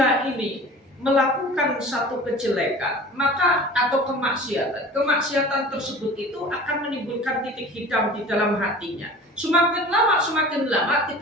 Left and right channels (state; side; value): normal; both; correlation 0.41